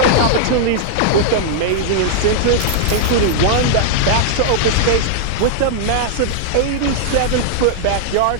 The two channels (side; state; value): both; different; correlation -0.01